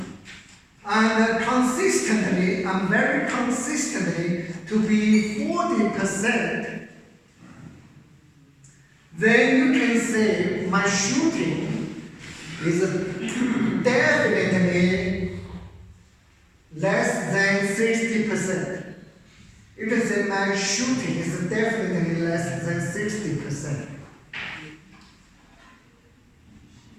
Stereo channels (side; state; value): both; identical; correlation 1.00